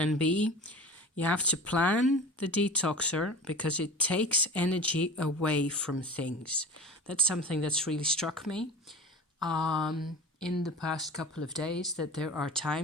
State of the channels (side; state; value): both; normal; correlation 0.35